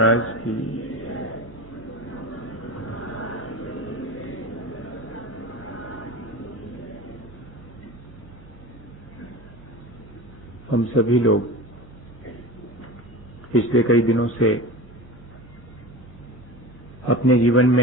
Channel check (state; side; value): normal; both; correlation 0.30